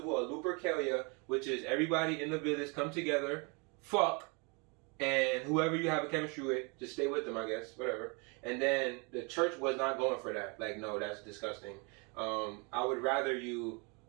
of Lupercalia, which is everybody in the village come together, fuck, and whoever you have a chemistry with, just stay with them, I guess, whatever. And then the church was not going for that. Like, no, that's disgusting. I would rather you,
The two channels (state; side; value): quieter; left; 31.7 dB